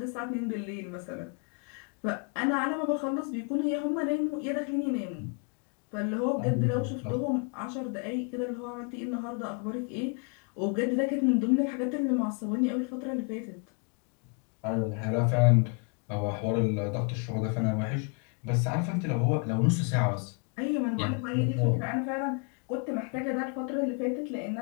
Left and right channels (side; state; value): right; quieter; 36.1 dB